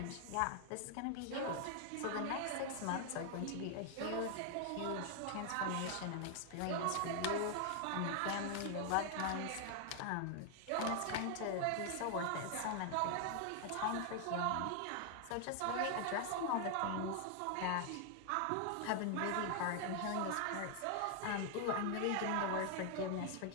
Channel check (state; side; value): different; both; correlation 0.00